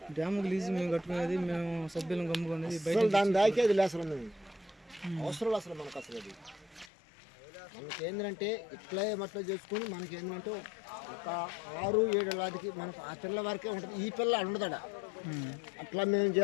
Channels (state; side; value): drops out; right; at 6.9 s